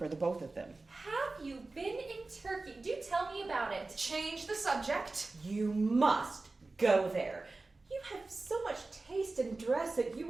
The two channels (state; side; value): quieter; left; 3.4 dB